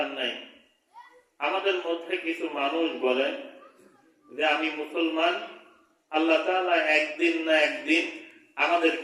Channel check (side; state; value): both; identical; correlation 1.00